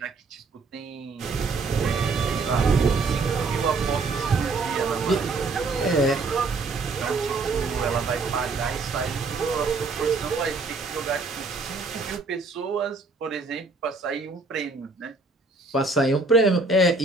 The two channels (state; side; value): quieter; left; 3.7 dB